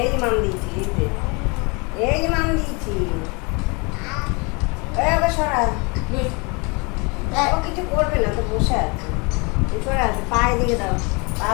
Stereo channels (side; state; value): right; quieter; 30.1 dB